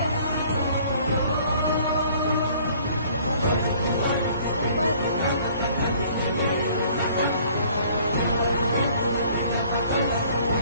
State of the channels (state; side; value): inverted; both; correlation -0.56